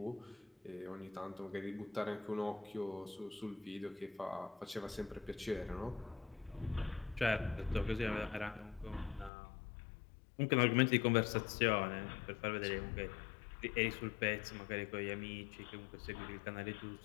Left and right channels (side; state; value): right; drops out; at 9.3 s